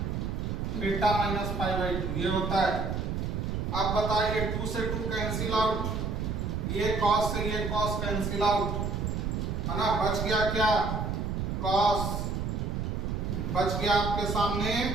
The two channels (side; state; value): right; noise; rumble, 1 dB below the sound